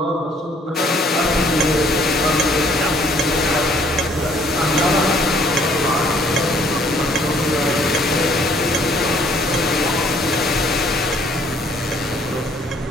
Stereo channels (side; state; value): both; normal; correlation 0.62